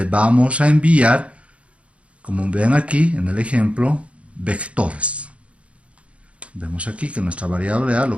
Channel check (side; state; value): left; late; 0.062 ms